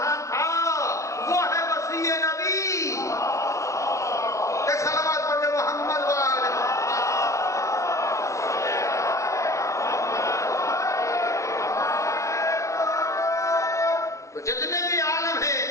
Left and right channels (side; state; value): right; late; 0.15 ms